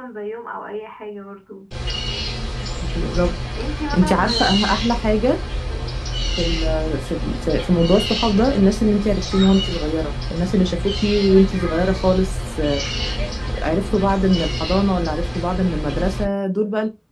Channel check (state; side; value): identical; both; correlation 1.00